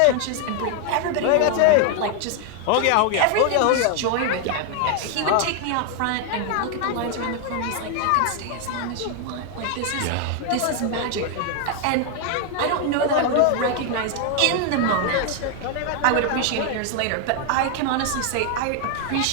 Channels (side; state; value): both; different; correlation 0.00